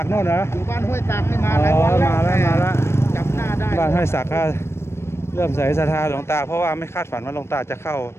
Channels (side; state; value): right; late; 0.12 ms